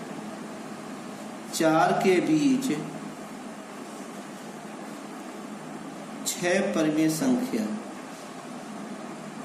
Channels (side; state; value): both; identical; correlation 1.00